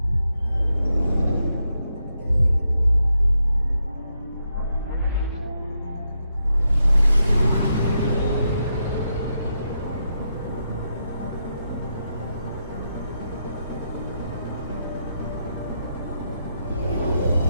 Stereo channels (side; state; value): both; inverted; correlation -0.83